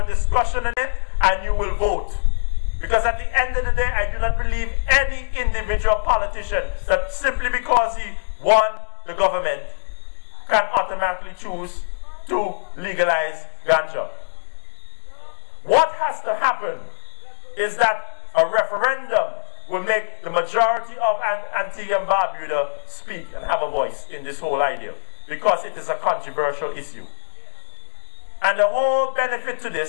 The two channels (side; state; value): right; silent; digital silence